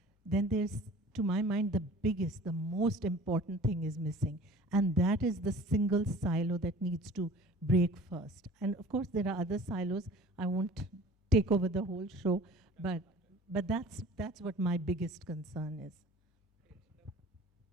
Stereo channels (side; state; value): both; normal; correlation 0.45